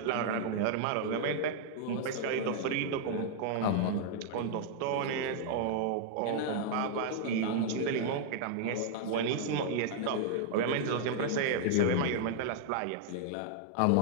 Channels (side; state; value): both; different; correlation -0.01